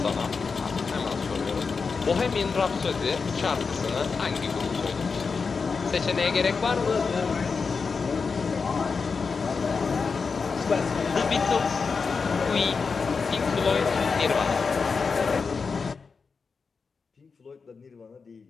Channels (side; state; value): right; quieter; 5.0 dB